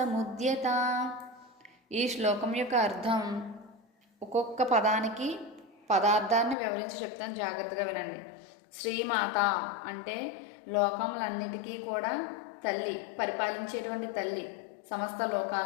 ఈ శ్లోకం యొక్క అర్థం, ఒక్కొక్క పదానికి పదార్థాన్ని వివరించి చెప్తాను, జాగ్రత్తగా వినండి. శ్రీమాత అంటే లోకములన్నిటికీ కూడా తల్లి, పరిపాలించేటువంటి తల్లి, సమస్త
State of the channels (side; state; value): right; drops out; at 6.6 s